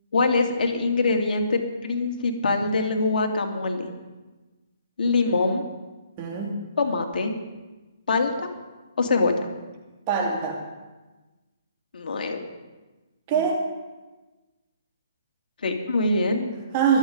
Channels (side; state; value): both; inverted; correlation -0.63